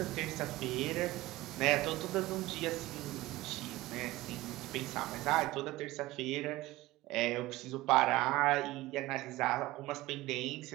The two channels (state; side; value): quieter; left; 18.6 dB